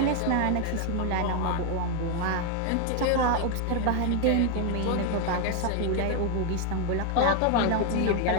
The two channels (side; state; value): both; different; correlation 0.01